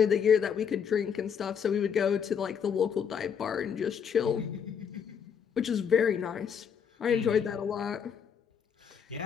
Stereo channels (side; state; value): right; quieter; 7.4 dB